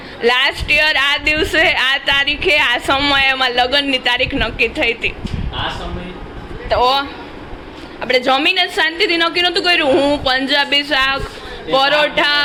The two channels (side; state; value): both; identical; correlation 1.00